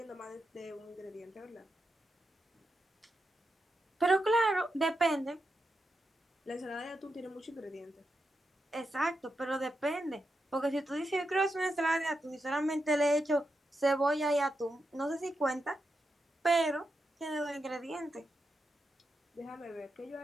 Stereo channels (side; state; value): both; normal; correlation 0.86